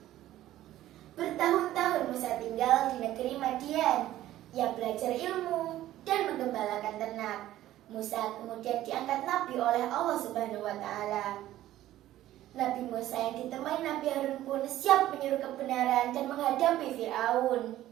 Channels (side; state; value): left; quieter; 14.0 dB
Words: Bertahun-tahun Musa tinggal di negeri Madian. Ia belajar ilmu dan menggembalakan ternak. Musa kemudian diangkat nabi oleh Allah Subhanahu wa taala. Nabi Musa yang ditemani Nabi Harun pun siap menyuruh kebenaran dan menghadapi Fir'aun.